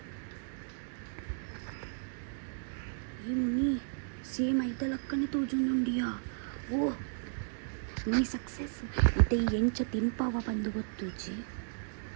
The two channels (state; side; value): silent; left; digital silence